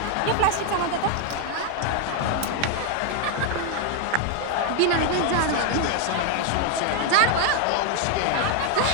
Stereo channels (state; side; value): different; both; correlation 0.01